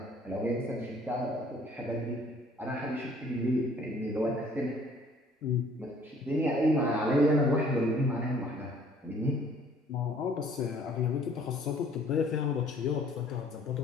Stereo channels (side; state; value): both; normal; correlation 0.56